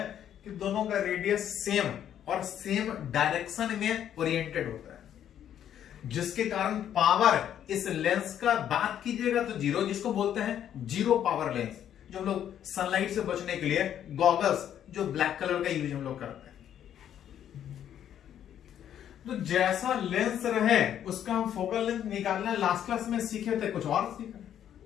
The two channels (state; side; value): quieter; right; 10.1 dB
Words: कि दोनों का रेडियस सेम और सेम डायरेक्शन में ओरिएंटेड होता है, जिसके कारण पावर इस लेंस का बात कीजिएगा तो 0, जिसको बोलते हैं 0 पावर लेंस। जो हम लोग सनलाइट से बचने के लिए गॉगल्स जो ब्लैक कलर का यूज हम लोग करते हैं, तो जैसा लेंस रहे उसका हम फोकल लेंथ निकालना लास्ट क्लास में सीखे थे, कुछ और सीखा।